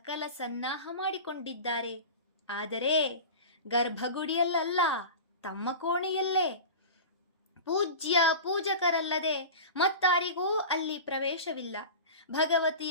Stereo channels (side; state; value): both; inverted; correlation -0.31